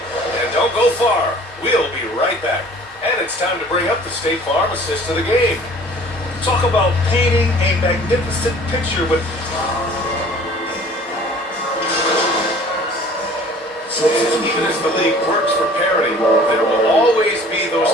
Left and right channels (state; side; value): normal; both; correlation 0.49